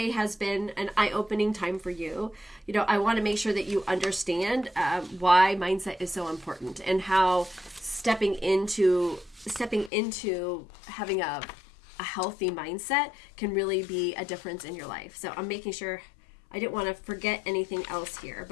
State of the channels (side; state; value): right; drops out; at 9.9 s